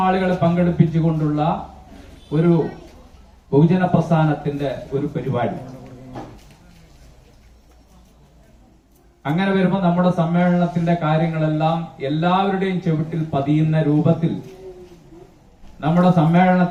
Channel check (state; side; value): identical; both; correlation 1.00